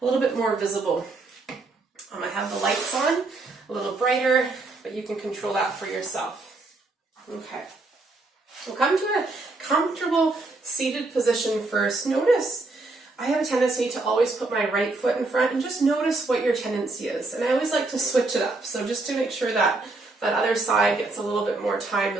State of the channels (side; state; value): left; quieter; 3.3 dB